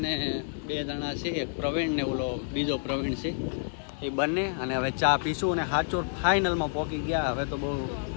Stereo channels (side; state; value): right; silent; digital silence